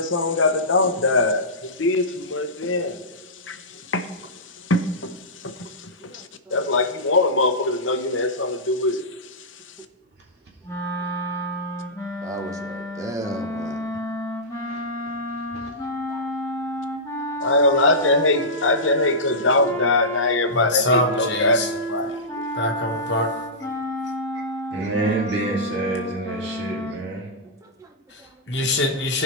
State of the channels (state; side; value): normal; both; correlation -0.15